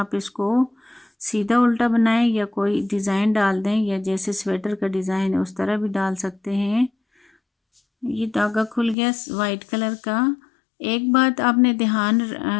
इसको सीधा उल्टा बनाएं या कोई डिज़ाइन डाल दें, या जैसे स्वेटर का डिज़ाइन है उस तरह भी डाल सकते हैं। ये धागा खुल गया वाइट कलर का। एक बात आपने ध्यान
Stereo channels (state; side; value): drops out; right; at 9.0 s